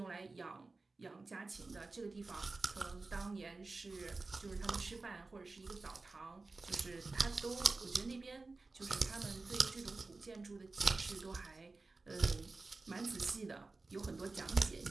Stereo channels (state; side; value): quieter; left; 3.6 dB